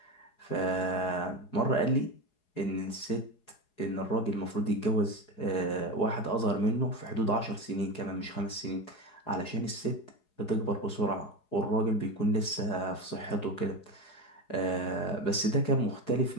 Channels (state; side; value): late; right; 4.8 ms